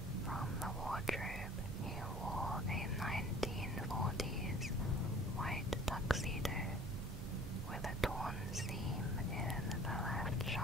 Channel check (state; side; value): normal; both; correlation 0.49